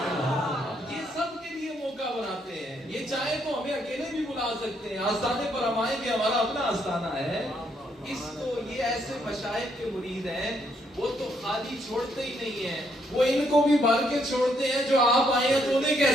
یہ سب کے لیے موقع بناتے ہیں، یہ چاہے تو ہمیں اکیلے بھی بلا سکتے ہیں، آستانے پر ہم آئیں گے، ہمارا اپنا آستانہ ہے، اس کو یہ ایسے مشائخ کے مرید ہیں، وہ تو خالی چھوڑتے ہی نہیں ہیں، وہ ان کو بھی بھر کے چھوڑتے ہیں، جو آپ آئے ہیں تو انہیں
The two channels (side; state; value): both; normal; correlation 0.73